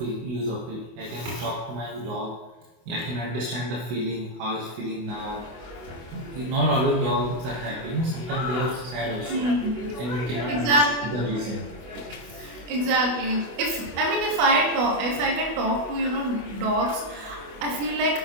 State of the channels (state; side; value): late; left; 24 ms